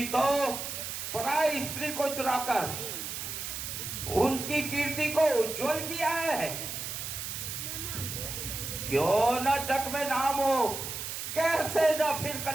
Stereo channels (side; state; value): right; noise; hiss, 6 dB below the sound